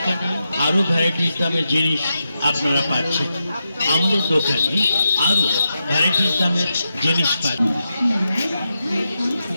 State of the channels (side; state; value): both; inverted; correlation -0.87